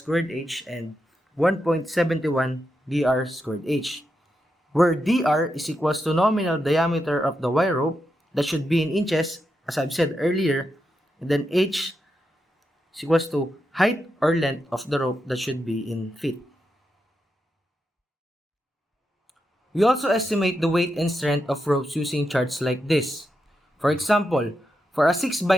h and 1.71 dr squared h, where dr is equals to nominal diameter of the wire rope that should be in inches, as I've said earlier, and then h is equals to height or length of the rope that should be in feet. We also estimate the weight and strength of ropes using charts like this. For example, for a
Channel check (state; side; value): normal; both; correlation 0.86